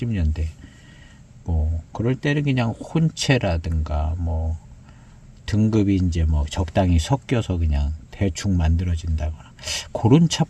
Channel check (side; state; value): both; identical; correlation 1.00